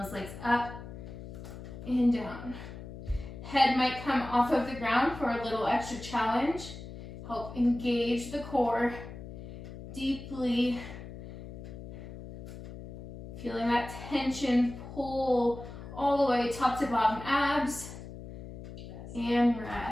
legs up and down. Head might come off of the ground for a little extra challenge. Help engage the core deeply. Feeling that tension pull all the way top to bottom abs. And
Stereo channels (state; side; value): noise; left; hum, 12 dB below the sound